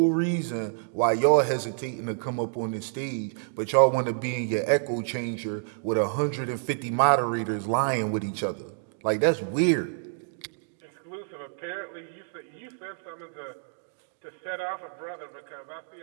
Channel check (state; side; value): silent; left; digital silence